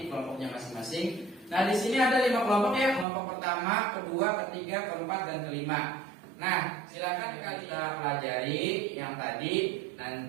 kelompoknya masing-masing. Nah, di sini ada 5 kelompok ya. Kelompok pertama, kedua, ketiga, keempat dan kelima. Nah, silakan kita pelajari yang tadi.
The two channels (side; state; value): left; drops out; at 3.1 s